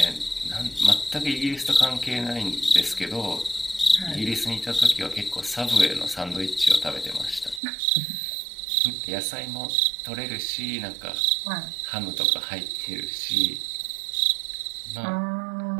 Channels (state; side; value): drops out; left; at 7.6 s